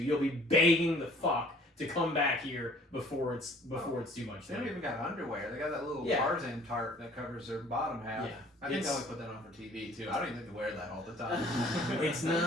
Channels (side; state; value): both; normal; correlation 0.54